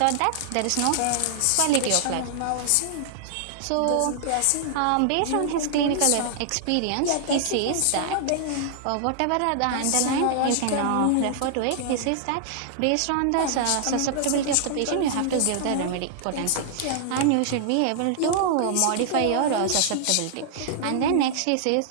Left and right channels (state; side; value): different; both; correlation -0.01